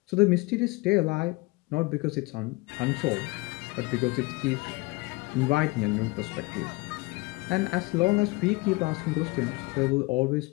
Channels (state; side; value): quieter; right; 24.3 dB